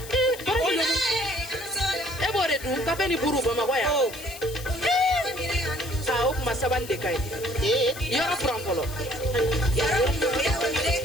e b'o de dun kafe ni buru bamakɔ yan o kuma sabali de ka ɲi yɔrɔ furan fɔlɔ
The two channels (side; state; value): left; noise; hiss, 14 dB below the sound